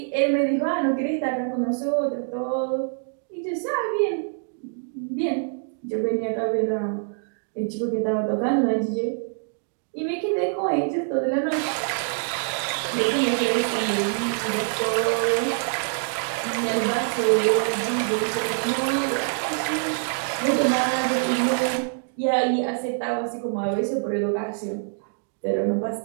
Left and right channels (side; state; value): left; silent; digital silence